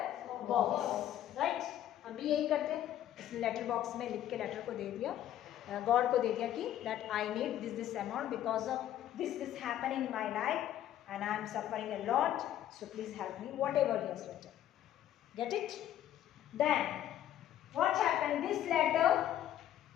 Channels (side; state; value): right; quieter; 11.8 dB